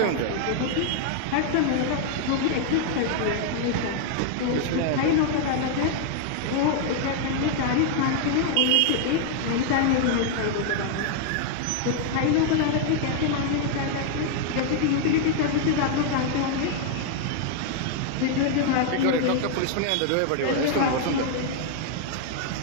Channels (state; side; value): different; both; correlation 0.00